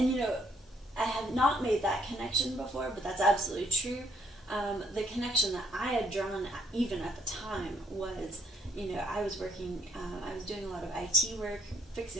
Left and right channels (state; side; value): normal; both; correlation 0.69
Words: I had not made that connection before, but that's absolutely true. The connection that I had drawn even at the time was, I was working, I was doing a lot of IT work,